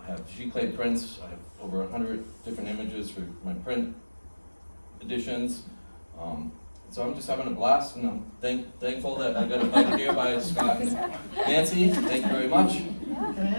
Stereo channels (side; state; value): both; inverted; correlation -1.00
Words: have sheet clay prints. I have over 100 different images for my print editions. So I'm just having a blast, and I'm thankful that I got invited here by Scott and Nancy. Thank you very much. Can